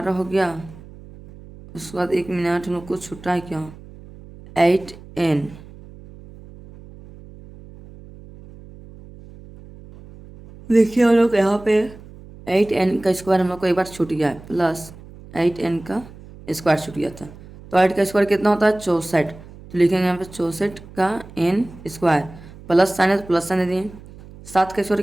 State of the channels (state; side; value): noise; right; hum, 19 dB below the sound